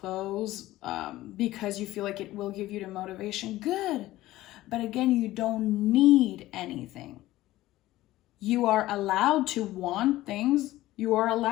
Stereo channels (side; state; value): right; quieter; 16.3 dB